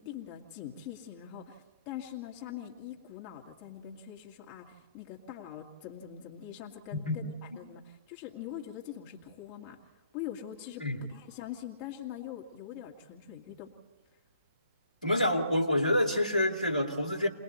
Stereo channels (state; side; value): inverted; both; correlation -0.67